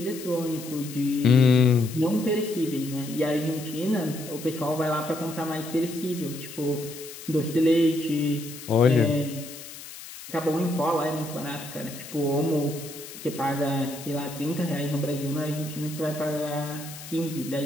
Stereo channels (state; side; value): noise; left; hiss, 14 dB below the sound